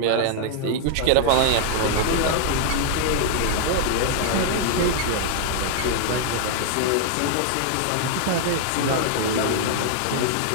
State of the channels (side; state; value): both; different; correlation -0.01